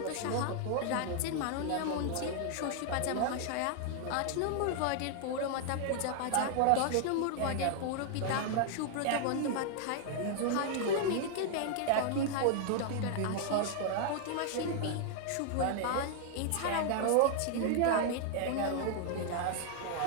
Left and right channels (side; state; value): both; different; correlation 0.00